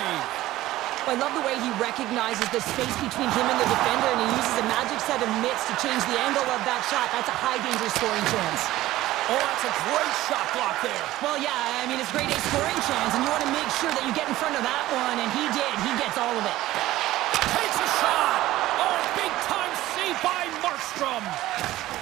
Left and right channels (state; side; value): quieter; left; 15.9 dB